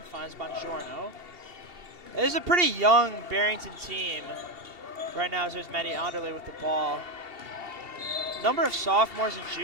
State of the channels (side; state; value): left; late; 2.7 ms